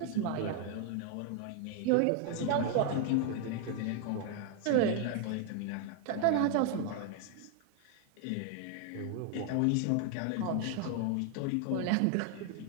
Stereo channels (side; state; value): both; different; correlation 0.01